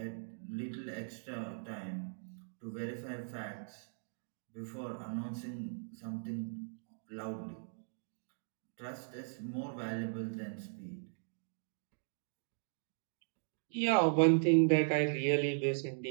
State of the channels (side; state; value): left; silent; digital silence